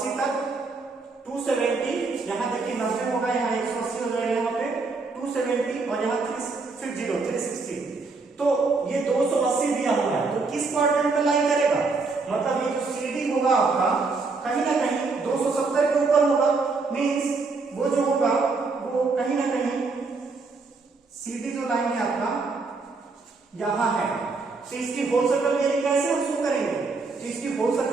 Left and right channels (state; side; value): quieter; left; 4.1 dB